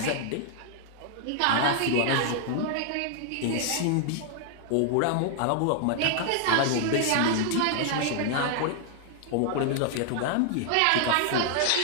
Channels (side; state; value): both; different; correlation 0.00